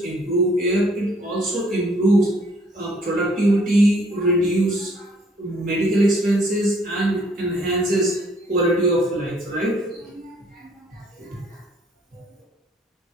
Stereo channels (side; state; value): both; normal; correlation 0.62